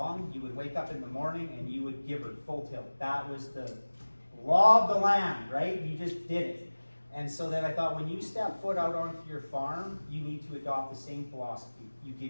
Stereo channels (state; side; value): inverted; both; correlation -1.00